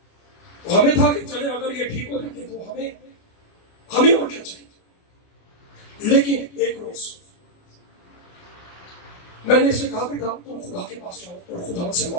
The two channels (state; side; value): late; right; 29 ms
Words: तो हमें था कि चले अगर ये ठीक हो जाती तो हमें और क्या चाहिए। लेकिन एक रोज मैंने इसे कहा बेटा तुम खुदा के पास जाओ और खुदा से